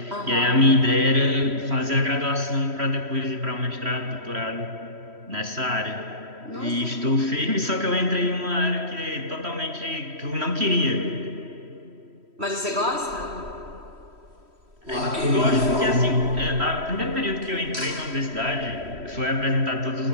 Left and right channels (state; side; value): late; left; 3.1 ms